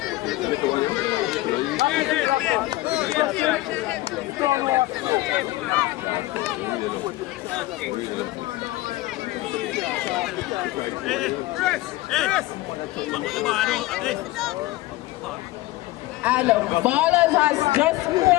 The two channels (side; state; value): right; quieter; 18.4 dB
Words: And Ballaz has just